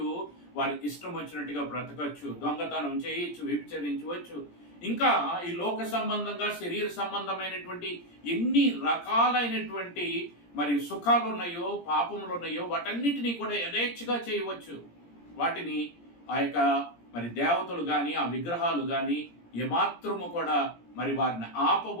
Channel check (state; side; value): late; right; 17 ms